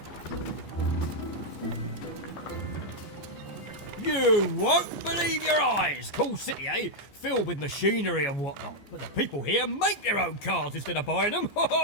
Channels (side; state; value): right; late; 14 ms